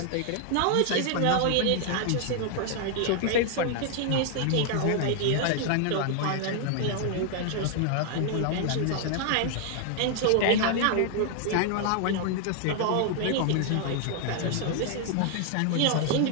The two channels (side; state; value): both; different; correlation 0.00